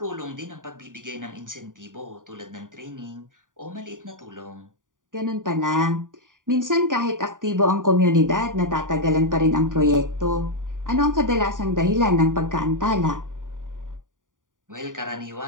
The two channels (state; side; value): late; left; 0.88 ms